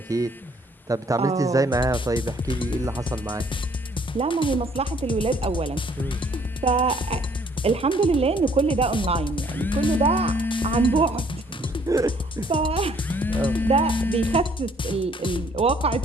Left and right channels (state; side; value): normal; both; correlation 0.62